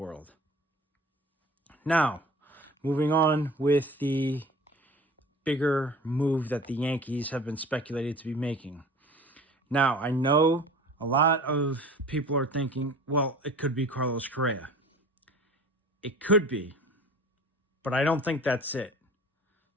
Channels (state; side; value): normal; both; correlation 0.42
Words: Now, moving on with the bigger move that the Yankees have been speculated to be making. Now, I know a lot of people are thinking, well, it could be Carlos Correa. It could be, but I don't think that's it.